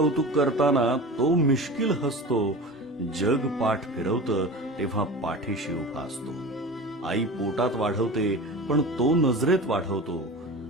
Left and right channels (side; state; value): both; normal; correlation 0.33